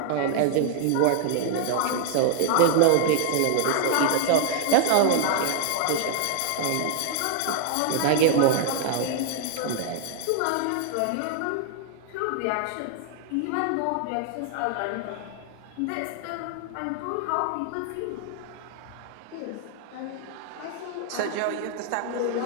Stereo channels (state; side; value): different; both; correlation 0.00